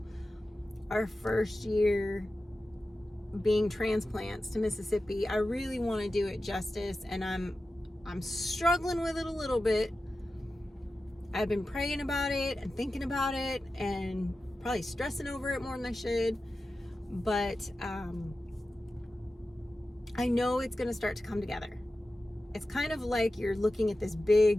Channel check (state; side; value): normal; both; correlation 0.93